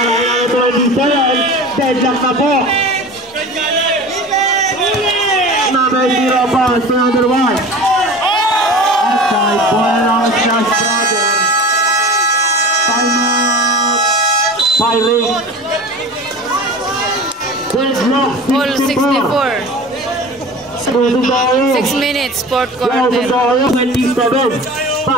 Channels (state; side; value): normal; both; correlation 0.36